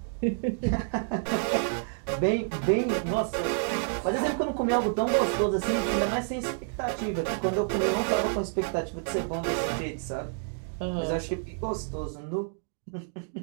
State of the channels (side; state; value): left; silent; digital silence